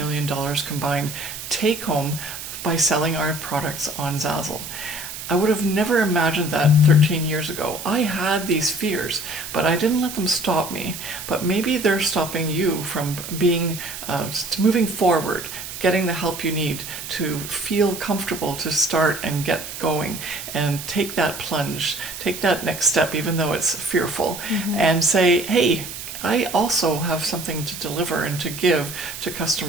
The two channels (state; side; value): noise; right; hiss, 9 dB below the sound